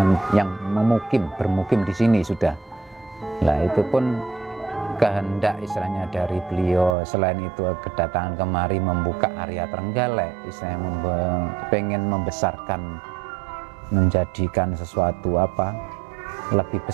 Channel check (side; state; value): left; drops out; at 7.0 s